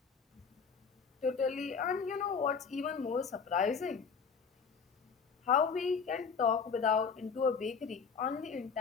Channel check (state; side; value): quieter; right; 5.8 dB